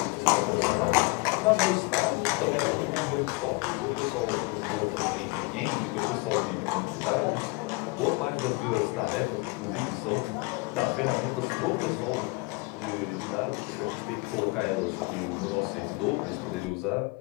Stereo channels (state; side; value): quieter; right; 27.1 dB